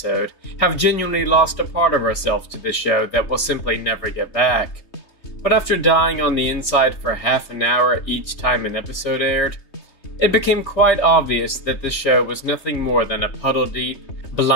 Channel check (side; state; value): right; late; 3.2 ms